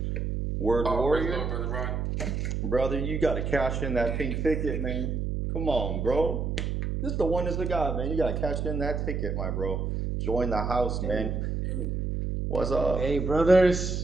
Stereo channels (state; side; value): noise; right; hum, 1 dB below the sound